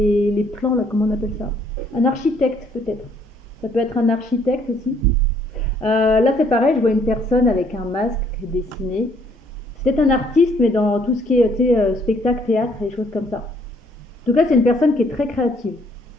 plans, là, comment on appelle ça? Un architecte peut-être. Ça peut être un architecte aussi. Là c'est pareil, je vois une personne avec un masque dessiné. C'est peut-être un artiste, mais dans tout ce qui est spectacle, théâtre, et des choses comme ça. En tout cas, c'est une personne qui est très créative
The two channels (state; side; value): normal; both; correlation 0.65